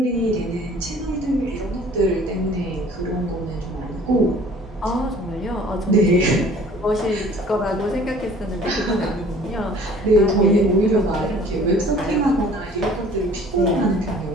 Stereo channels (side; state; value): both; normal; correlation 0.51